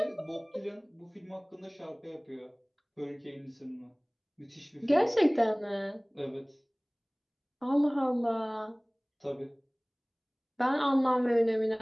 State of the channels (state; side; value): identical; both; correlation 1.00